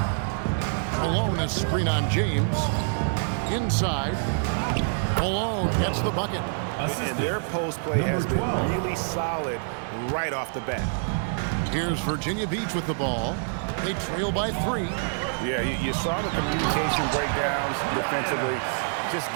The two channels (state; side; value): silent; left; digital silence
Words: Malone, a screen on James. Inside. Malone gets the bucket. And their post play has been really solid right off the bat. Here's Virginia Beach with the ball. They trail by 3. Yeah, you saw the communication breakdowns defensively, just